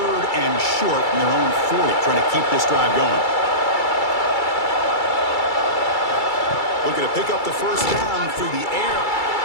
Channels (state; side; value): late; right; 2.3 ms